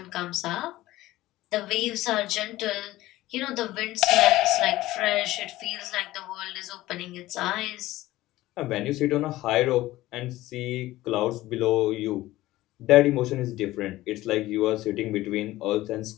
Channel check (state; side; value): quieter; right; 16.8 dB